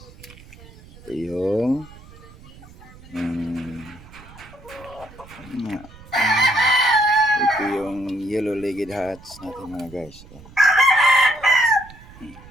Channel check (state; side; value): noise; right; rumble, 20 dB below the sound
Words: Ito yung ito yung yellow-legged hats natin mga guys.